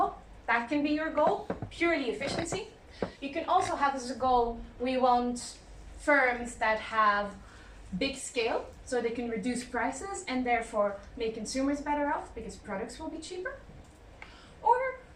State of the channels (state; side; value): identical; both; correlation 1.00